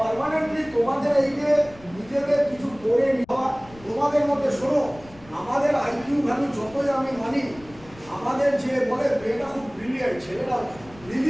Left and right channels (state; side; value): noise; left; rumble, 22 dB below the sound